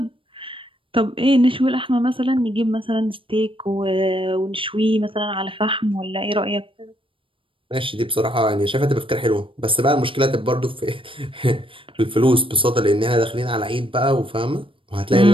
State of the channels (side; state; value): left; late; 0.25 ms